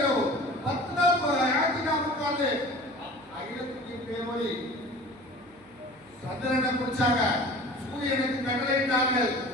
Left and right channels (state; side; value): noise; right; hum, 28 dB below the sound